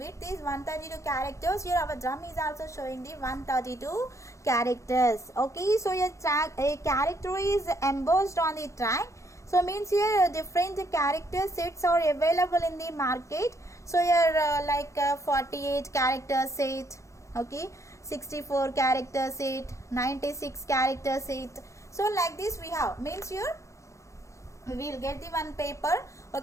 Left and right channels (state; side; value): late; right; 0.15 ms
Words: is 132 characters. Here our drum is also showing the 132 characters. Okay, so your a character is embossed on the track. So means here different character sets are available in the market. So here 48 character set. Okay, 64 character set, 96 character set. So like this we have, means here we will get the one paper.